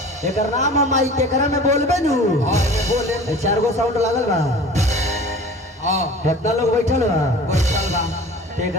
एकर नाम हम माई के करा में बोलबे नु हां बोले ए 4 गो साउंड लागल बा हां कितना लोग बैठल बा बैठल बा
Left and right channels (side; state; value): both; normal; correlation 0.42